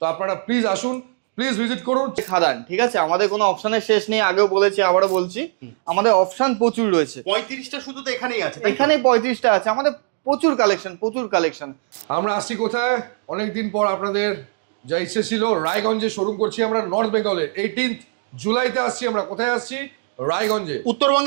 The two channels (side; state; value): left; silent; 65 dB below the other